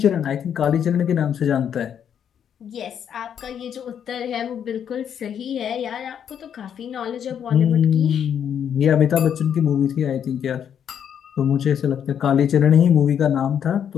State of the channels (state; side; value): quieter; right; 8.6 dB